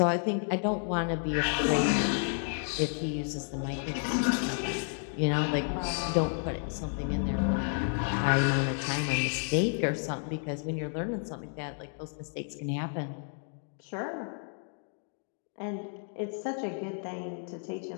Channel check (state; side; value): silent; right; 57 dB below the other